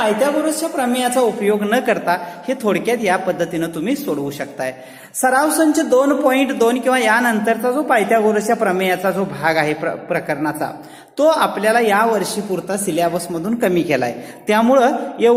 प्रमेयाचा उपयोग न करता हे थोडक्यात या पद्धतीनं तुम्ही सोडवू शकताय. सराव संच 2.2 किंवा यानंतरचा जो पायथागोरसच्या प्रमेयाचा जो भाग आहे प्रकरणाचा, तो आपल्याला या वर्षी पुरता सिलेबस मधून कमी केलाय. त्यामुळं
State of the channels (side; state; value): both; identical; correlation 1.00